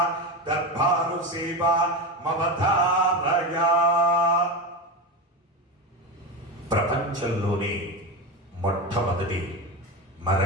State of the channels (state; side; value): normal; both; correlation 0.20